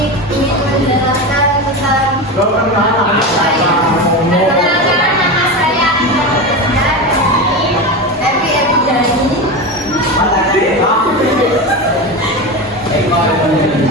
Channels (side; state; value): both; normal; correlation 0.21